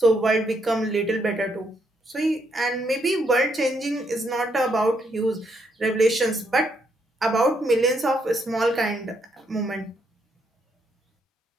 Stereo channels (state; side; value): normal; both; correlation 0.75